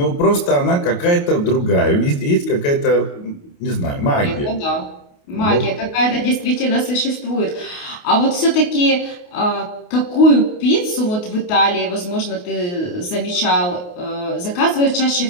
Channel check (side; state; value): right; late; 28 ms